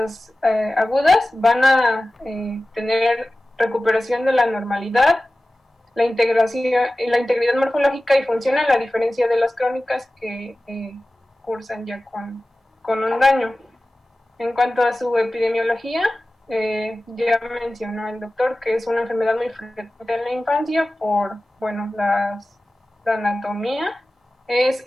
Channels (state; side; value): normal; both; correlation 0.96